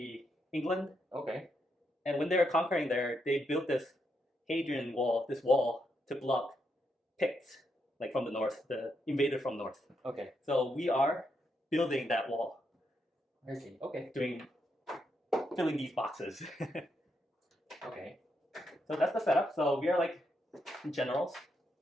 England, Okay. and when they were conquering there, they built this Hadrian Wall, this wall to block Picts, like from the north, the invader from north. Okay. So we are building that wall, I see. Okay. filling these boxes. Okay. So that's the setup. So we are like generals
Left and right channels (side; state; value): both; normal; correlation 0.80